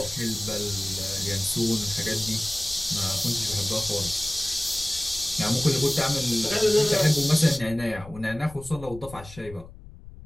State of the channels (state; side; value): noise; left; rumble, 16 dB below the sound